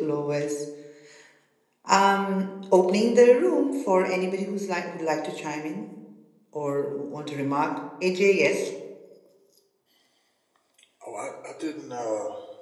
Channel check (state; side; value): identical; both; correlation 1.00